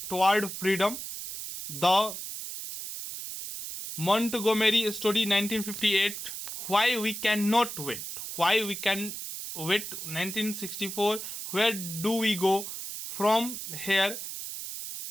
toward freedom, the Montgomery story 1958, why we can not wait, why we can wait 1964, where do we go from here,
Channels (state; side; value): noise; right; hiss, 7 dB below the sound